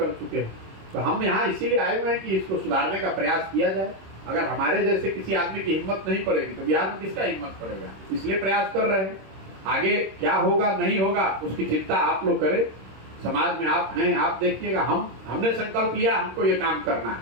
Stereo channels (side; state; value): left; late; 26 ms